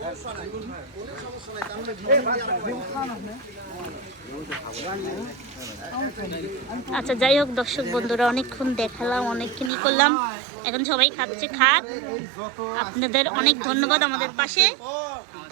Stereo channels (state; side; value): drops out; left; at 9.7 s